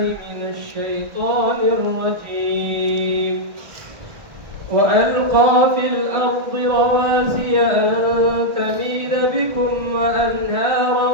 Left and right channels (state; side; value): late; left; 1.6 ms